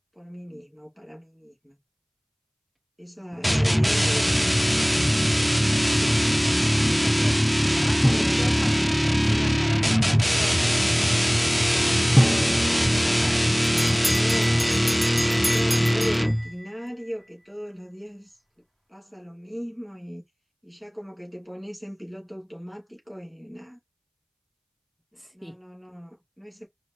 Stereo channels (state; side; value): identical; both; correlation 1.00